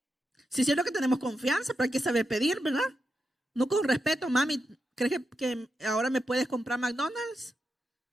Sí, es cierto que tenemos confianza, pero hay que saber pedir, ¿verdad? No con respeto: mami, ¿crees que ahora me puedes comprar McDonald's?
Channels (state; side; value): normal; both; correlation 0.87